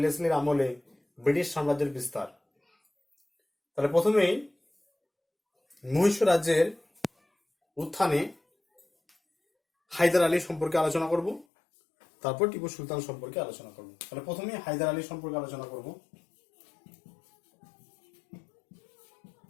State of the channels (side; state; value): right; drops out; at 11.5 s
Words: আমলে ব্রিটিশ সাম্রাজ্যের বিস্তার। তাহলে প্রথমেই মহীশূর রাজ্যের উত্থানে হায়দার আলী সম্পর্কে আলোচনা করব, তারপর টিপু সুলতান সম্পর্কে আলোচনা করব। তাহলে প্রথমেই হায়দার আলী সম্পর্কে আলোচনা করব।